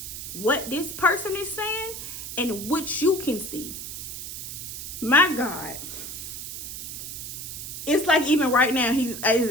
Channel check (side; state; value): right; noise; hiss, 8 dB below the sound